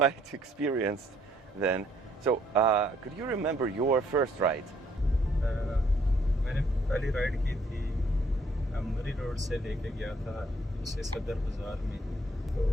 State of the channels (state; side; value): normal; both; correlation 0.66